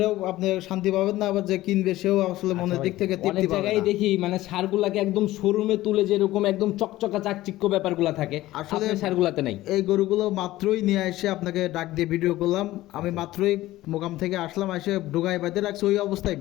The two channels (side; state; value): right; quieter; 16.3 dB